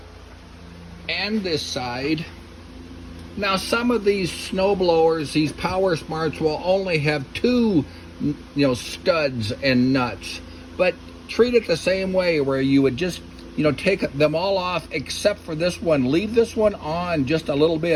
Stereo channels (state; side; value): identical; both; correlation 1.00